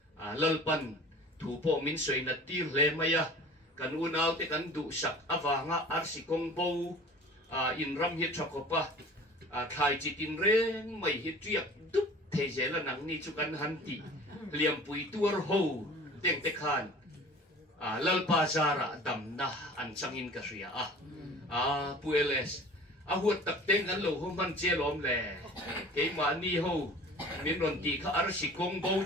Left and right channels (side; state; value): both; normal; correlation 0.44